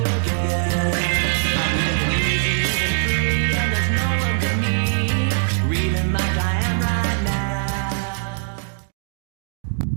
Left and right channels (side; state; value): left; silent; digital silence